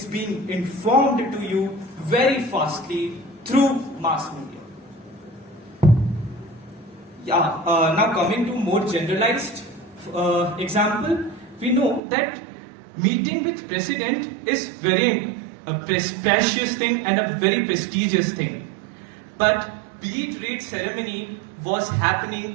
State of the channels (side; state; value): left; drops out; at 12.0 s